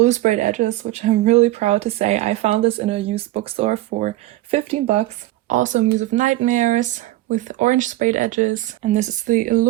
sprayed edges, which I'm really proud to say. I found this in a used bookstore for 15 bucks. Also Muse of Nightmares with orange sprayed edges, and this is the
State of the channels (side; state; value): left; quieter; 16.5 dB